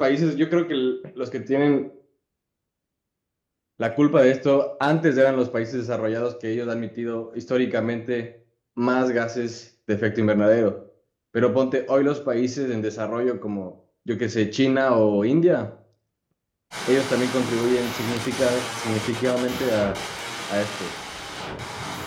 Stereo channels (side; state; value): both; identical; correlation 1.00